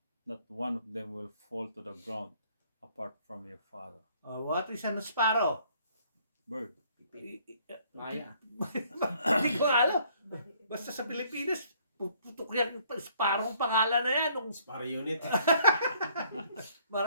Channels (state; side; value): inverted; both; correlation -0.63